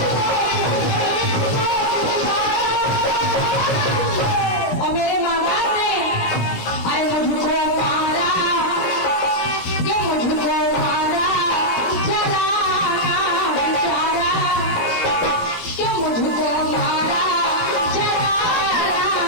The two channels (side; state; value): right; late; 17 ms